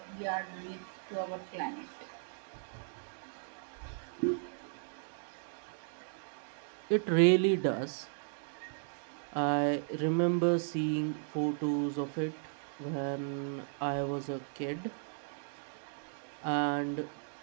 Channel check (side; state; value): left; silent; digital silence